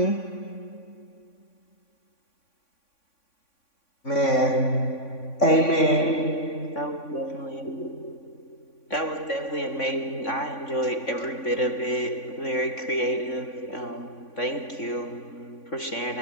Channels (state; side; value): late; right; 3.6 ms